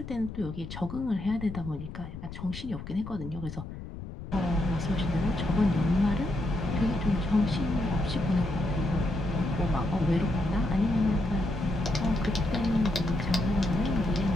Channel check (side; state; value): left; noise; rumble, 11 dB below the sound